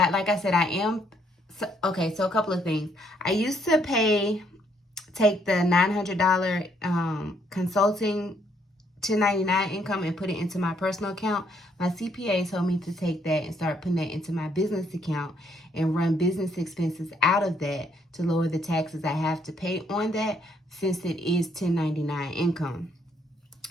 I said, okay, so a couple of things. I used to take the $900 consulting 1099 income and put it into my personal account. My CPA told me to take that and start putting that into my business account and run business expenses out of that to lower the taxes I have to pay on that, since it is 1099 income.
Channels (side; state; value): both; normal; correlation 0.70